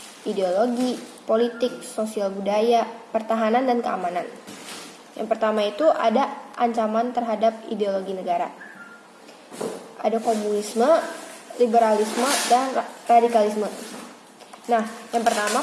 ideologi, politik, sosial budaya, pertahanan, dan keamanan. Yang pertama itu ada ancaman terhadap ideologi negara. Ada komunisme, liberalisme, dan radikalisme. Nah, yang pertama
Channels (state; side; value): identical; both; correlation 1.00